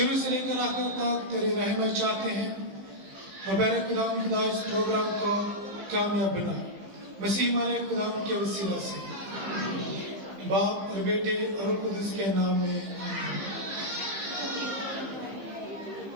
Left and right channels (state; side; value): late; left; 15 ms